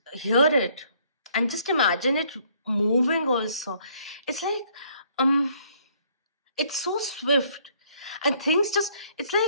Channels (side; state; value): both; inverted; correlation -0.64